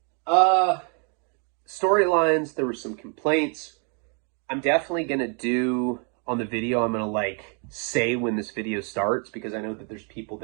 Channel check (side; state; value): left; quieter; 38.5 dB